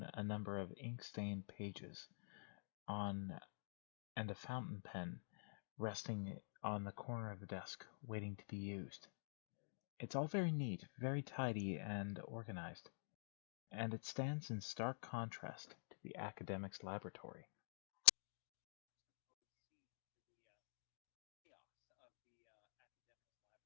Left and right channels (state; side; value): silent; right; digital silence